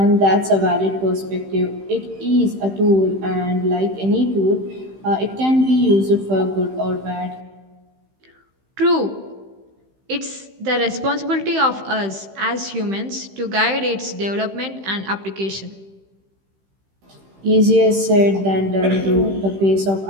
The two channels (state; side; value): late; left; 15 ms